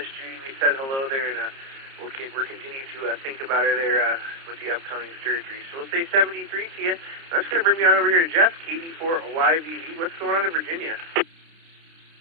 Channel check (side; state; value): left; late; 30 ms